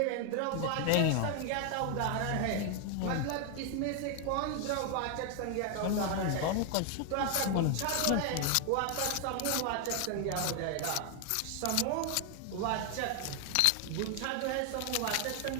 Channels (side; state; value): both; different; correlation 0.00